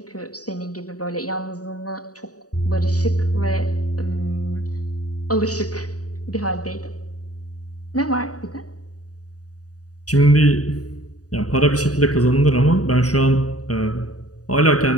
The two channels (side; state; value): right; late; 0.67 ms